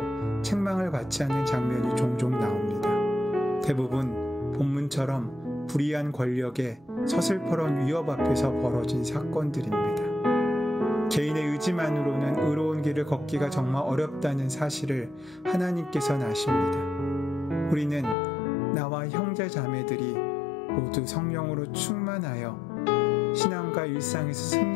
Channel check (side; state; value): right; drops out; at 18.2 s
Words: 책망을 받지 않는 장면이 종종 나옵니다. 대부분 본문처럼 불의한 권력의 서슬퍼런 위협 앞에서 벌어진 사건들입니다. 개인의 의지만으로는 의로운 길을 걷기가 정말 어렵다는 사실을 하나님께서는 아십니다. 우리는 나와 형제 자매들이 모두 성령으로 충만하여 신앙과 일상에서